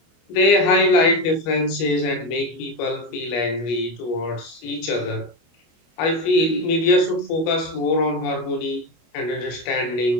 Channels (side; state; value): right; late; 25 ms